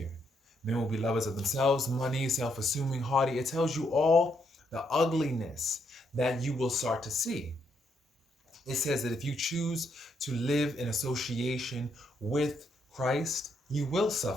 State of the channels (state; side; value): normal; both; correlation 0.76